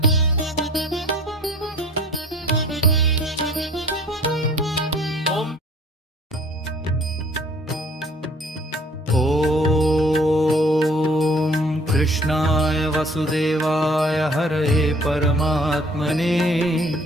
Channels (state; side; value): normal; both; correlation 0.53